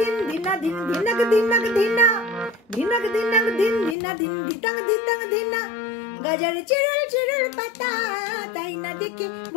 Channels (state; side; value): drops out; right; at 4.0 s